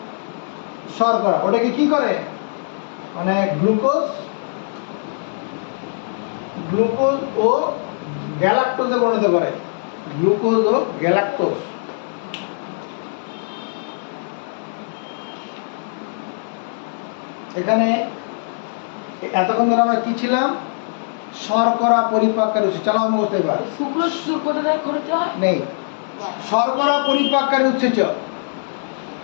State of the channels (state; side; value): silent; right; digital silence